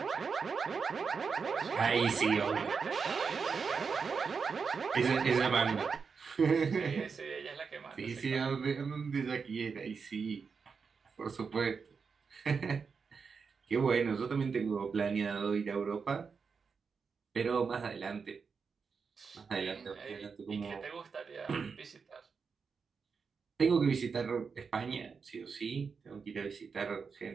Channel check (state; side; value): quieter; left; 5.5 dB